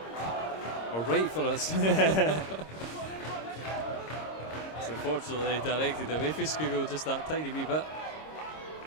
Or right for us. So unfortunately directed away from Skugel just that tiny wee bit.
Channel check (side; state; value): right; late; 26 ms